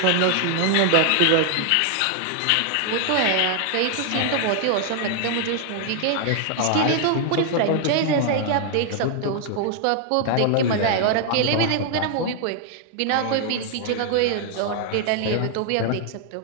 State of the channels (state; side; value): different; both; correlation 0.00